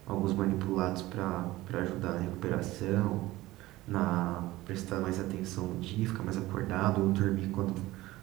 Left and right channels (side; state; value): left; quieter; 17.9 dB